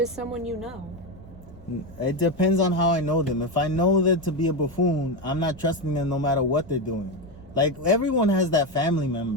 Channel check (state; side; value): normal; both; correlation 0.12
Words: someone you know. It depends on how I know them. If I know them to be a buffoon, I'm not trusting them no matter what they're doing. Like, everyone has that family